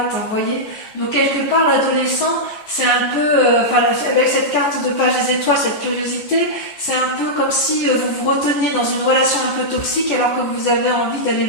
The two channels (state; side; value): late; right; 14 ms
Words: vous voyez. Donc quelque part l'adolescent c'est un peu, avec cette carte de page des étoiles, cette curiosité, c'est un peu comme si vous vous reteniez dans une relation un peu toxique alors que vous avez envie d'aller